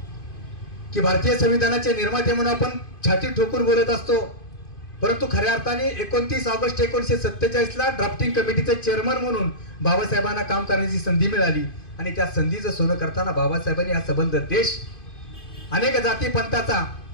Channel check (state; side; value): late; right; 2.5 ms